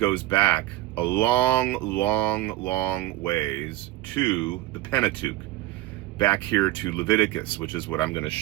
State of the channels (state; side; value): quieter; left; 16.1 dB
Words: back a long ways to the Pentateuch, back here to Leviticus, which is what I'm going to